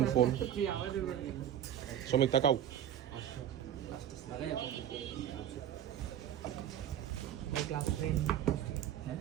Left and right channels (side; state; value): left; quieter; 10.5 dB